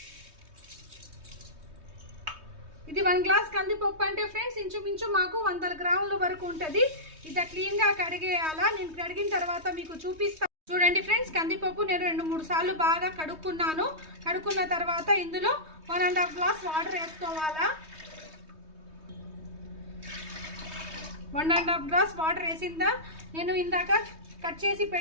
ఇది 1 గ్లాస్ కందిపప్పు అంటే ఫ్రెండ్స్ ఇంచుమించు మాకు 100 గ్రాముల వరకు ఉంటుంది. ఇది క్లీన్గా కడిగేయాలా. నేను కడిగిన తర్వాత మీకు చూపిస్తాను. చూడండి ఫ్రెండ్స్, కందిపప్పు నేను 2-3 సార్లు బాగా కడుక్కున్నాను. కడుక్కున్న తర్వాత ఇందులో 1.5 గ్లాస్ వాటర్ వేసుకోవాలా. 1.5 గ్లాస్ వాటర్ వేసిందా. నేను ఇందాక కట్ చేసి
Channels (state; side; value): late; left; 3.2 ms